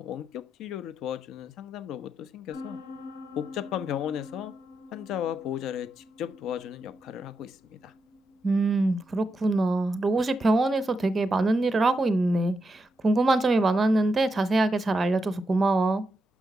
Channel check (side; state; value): both; normal; correlation 0.85